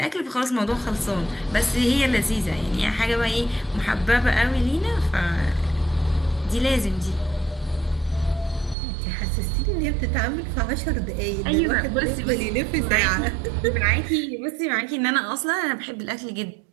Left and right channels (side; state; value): left; drops out; at 8.8 s